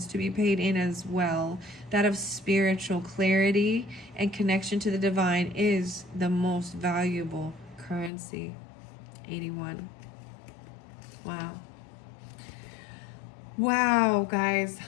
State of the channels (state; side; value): drops out; right; at 8.1 s